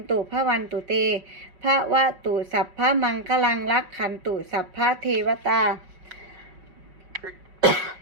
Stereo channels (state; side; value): late; left; 5.4 ms